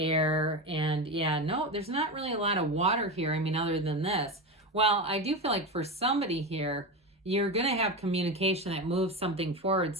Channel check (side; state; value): both; normal; correlation 0.19